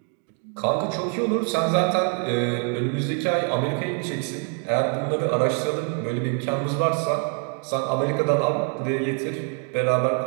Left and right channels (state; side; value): quieter; left; 38.5 dB